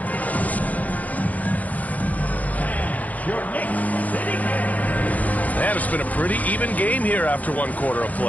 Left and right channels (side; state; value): right; late; 0.075 ms